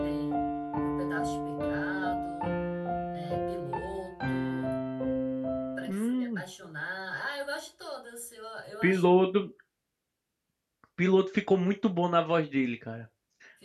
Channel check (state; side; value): identical; both; correlation 1.00